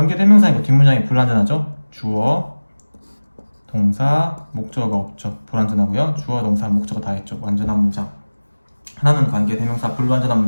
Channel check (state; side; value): inverted; both; correlation -1.00